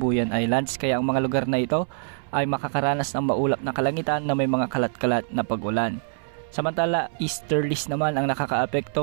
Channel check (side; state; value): left; silent; 62 dB below the other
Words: Islands, kaya ang mga lugar na ito ay makakaranas ng maulap na kalangitan na may mga kalat-kalat na pag-ulan. Samantala, easterlies naman ang